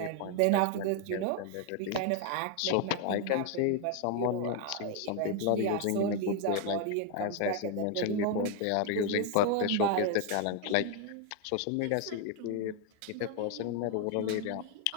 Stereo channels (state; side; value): different; both; correlation 0.01